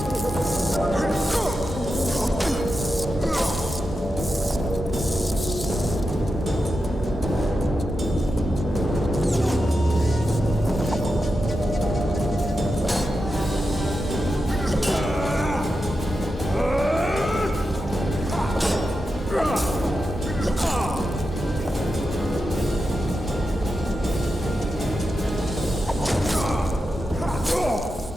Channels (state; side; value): normal; both; correlation 0.89